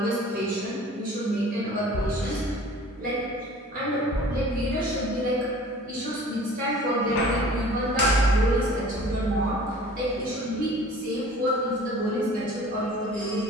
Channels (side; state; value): both; normal; correlation 0.47